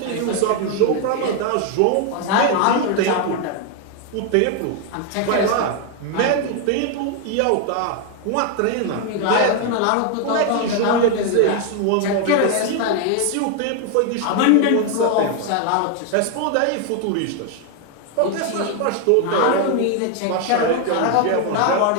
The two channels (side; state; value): both; different; correlation 0.01